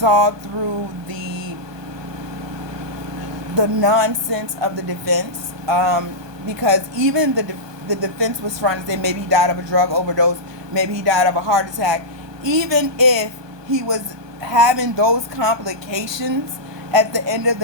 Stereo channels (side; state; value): left; late; 1.2 ms